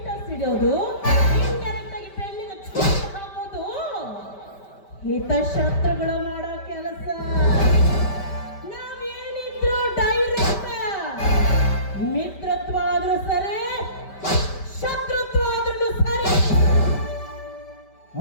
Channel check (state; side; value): late; right; 5.1 ms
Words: ಇಡೋದು, ಇಂಡೈರೆಕ್ಟ್ ಆಗಿ ಪೆನ್ನಿಗೆ ಚೂರು ಹಾಕೋದು ಹಿತಶತ್ರುಗಳು ಮಾಡೋ ಕೆಲಸ. ನಾವೇನಿದ್ರು ಡೈರೆಕ್ಟ್. ಮಿತ್ರತ್ವ ಆದ್ರೂ ಸರಿ, ಶತ್ರುತ್ವ ಆದ್ರೂ ಸರಿ.